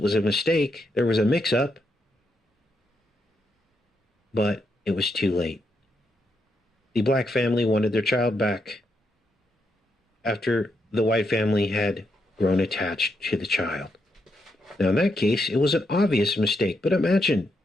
was a mistake. There was a mix-up. But it was too late. The black family wanted their child back after the white family had grown attached to the child. Now, in that case, it was an obvious mistake. But imagine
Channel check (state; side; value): normal; both; correlation 0.81